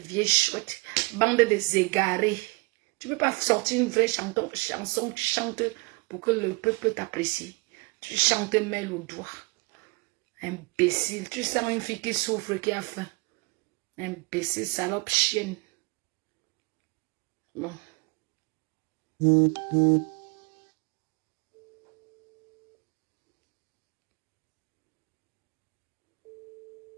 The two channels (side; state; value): left; quieter; 28.4 dB